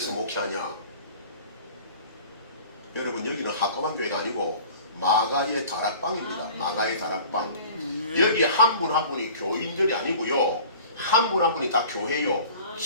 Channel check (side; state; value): both; inverted; correlation -0.44